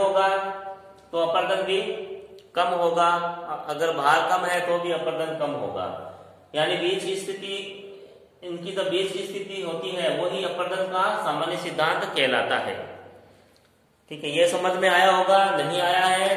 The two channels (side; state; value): both; identical; correlation 1.00